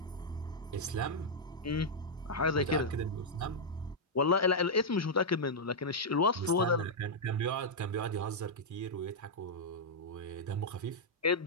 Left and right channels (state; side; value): normal; both; correlation -0.06